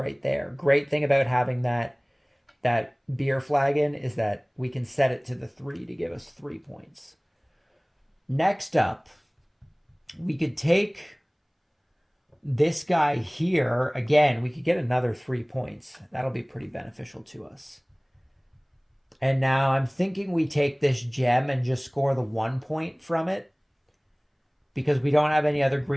there. Great thing about having that beer flagon is that we can set it to the 3 to give us 3 points. Next up, we could take this guy here. Again, we could get another 3 points. That'll be pretty beneficial to us. And now I'm thinking we take this gem and just score the 1 point from it because we don't have any other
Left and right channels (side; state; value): both; identical; correlation 1.00